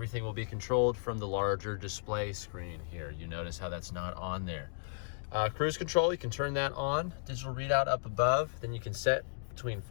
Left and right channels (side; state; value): right; silent; digital silence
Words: will be controlled from the larger display screen here. You notice how that's not on there. Cruise control, you can turn that on. Digital readout up above. Then you can set between